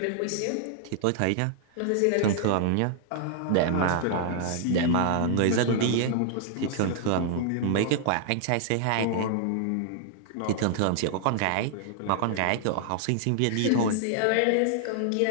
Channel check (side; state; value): both; different; correlation -0.01